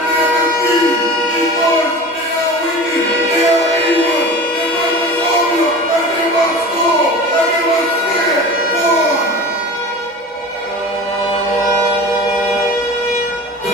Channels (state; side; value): normal; both; correlation 0.35